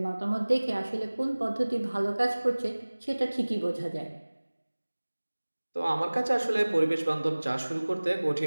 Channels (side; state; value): both; inverted; correlation -1.00